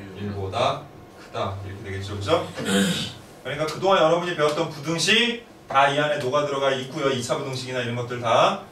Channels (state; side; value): identical; both; correlation 1.00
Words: 1보다 크다 이렇게 되겠죠, 그죠? 그러니까 그동안 여러분이 배웠던 부등식 다 이 안에 녹아 들어가 있고요. 2차 부등식이나 이런 것들 다.